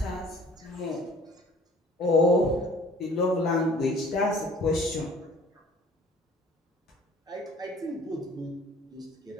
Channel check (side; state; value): both; normal; correlation 0.52